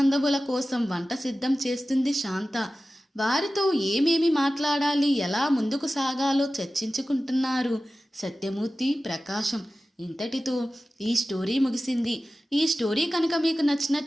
కోసం వంట సిద్ధం చేస్తుంది శాంత. వారితో ఏమేమి మాట్లాడాలి, ఎలా ముందుకు సాగాలో చర్చించుకుంటున్నారు సత్యమూర్తి, ప్రకాశం. ఇంతటితో ఈ స్టోరీ ముగిసింది. ఈ స్టోరీ కనుక మీకు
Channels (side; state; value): both; normal; correlation 0.95